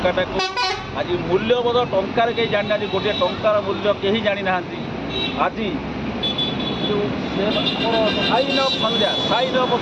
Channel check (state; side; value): identical; both; correlation 1.00